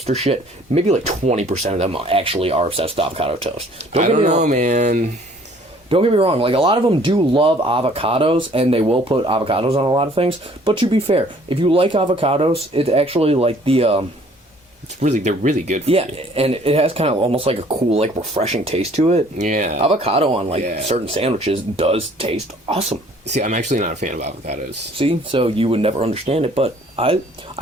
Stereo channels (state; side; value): normal; both; correlation 0.57